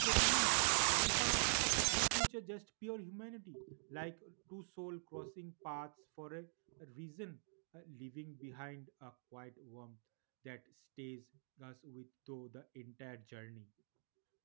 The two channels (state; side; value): silent; left; digital silence